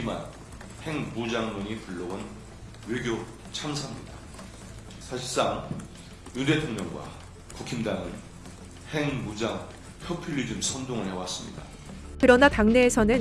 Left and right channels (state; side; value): identical; both; correlation 1.00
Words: 핵무장론이 불러온 외교 참사입니다. 사실상 윤 대통령과 국힘당은 핵무장 포퓰리즘 선동을 해왔습니다. 그러나